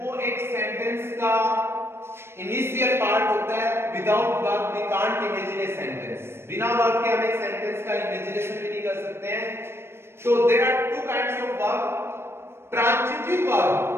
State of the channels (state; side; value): late; left; 0.12 ms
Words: एक सेंटेंस का इनिशियल पार्ट होता है। Without verb we can't imagine a sentence. बिना वर्ब के हम एक सेंटेंस का इमेजिनेशन भी नहीं कर सकते हैं। तो there are two kinds of verb. Transitive verb,